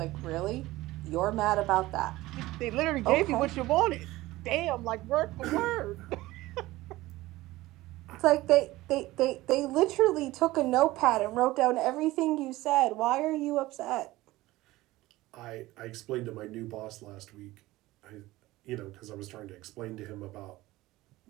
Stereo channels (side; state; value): left; quieter; 18.1 dB